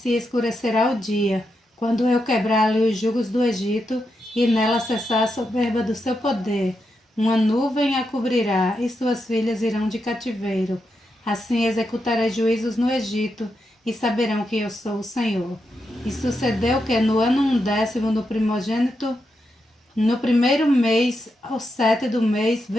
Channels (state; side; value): normal; both; correlation 0.85